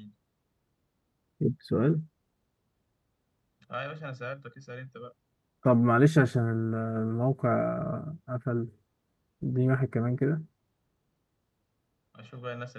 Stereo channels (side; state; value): both; identical; correlation 1.00